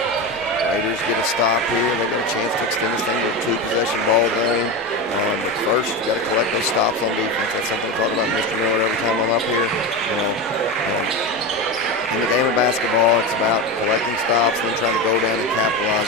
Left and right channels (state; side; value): noise; right; hum, 29 dB below the sound